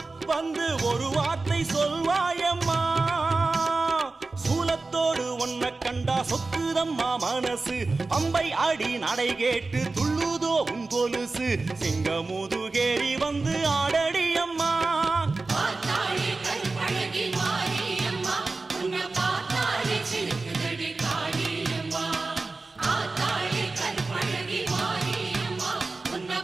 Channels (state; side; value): quieter; left; 3.6 dB